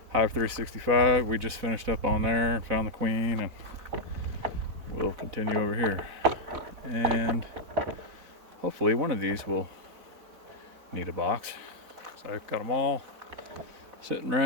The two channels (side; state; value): left; late; 4.0 ms